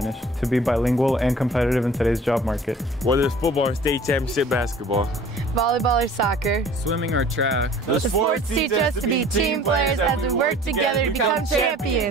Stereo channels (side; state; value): both; normal; correlation 0.49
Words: to be bilingual and competitive in today's job market. Whether it's football or state championship basketball, volleyball or soccer, swimming or track, the sports teach us to be team players as we work together to become